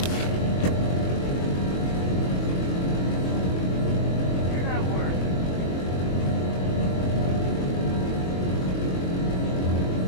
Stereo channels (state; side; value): late; right; 22 ms